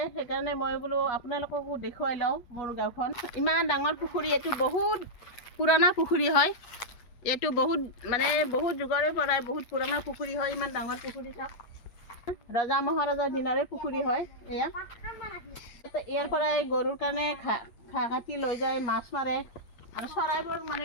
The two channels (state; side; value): late; right; 8.5 ms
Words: সেইকাৰণে মই বোলো আপোনালোককো দেখুৱাই লওঁ মোৰ গাঁওখন। ইমান ডাঙৰ পুখুৰী, এইটো বহুত পুৰণা পুখুৰী হয়। এইটো বহুত যুগৰে পৰাই বহুত পুৰণা পুখুৰী হয়। ইমান ডাঙৰ পুখুৰী চাওক, ৰজা মহাৰজাৰ দিনৰে পুখুৰী হয় এয়া। ইয়াৰ পৰাই গৰুৰ কাৰণে ঘাঁহ কাটি লৈ যায়, মাছ মাৰে আৰু চৰাইবোৰ